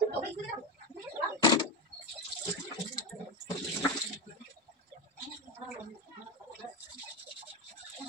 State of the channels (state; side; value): normal; both; correlation 0.16